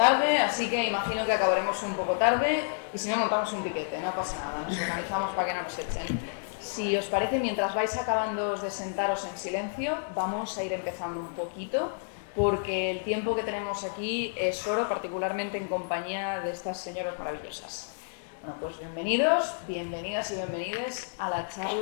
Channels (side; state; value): right; silent; digital silence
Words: así que imagino que acabaremos un poco tarde y si no montamos un piquete, no pasa nada, nos organizamos para que no nos echen. Si os parece, mientras vais acabando de sentaros en silencio, vamos a ir empezando un poquito, porque el tiempo que tenemos aquí es oro, particularmente en compañía de estas señoras maravillosas. Bueno, pues bienvenidos, bienvenidas y bienvenides a la